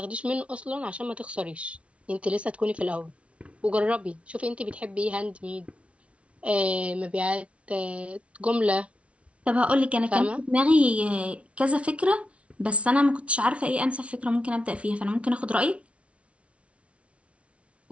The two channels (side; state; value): left; late; 0.062 ms